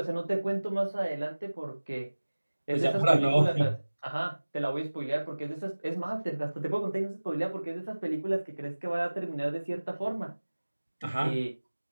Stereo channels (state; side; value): inverted; both; correlation -1.00